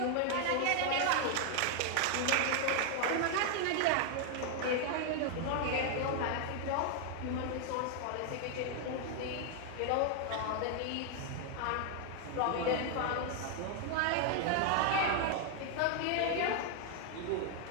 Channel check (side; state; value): both; different; correlation 0.00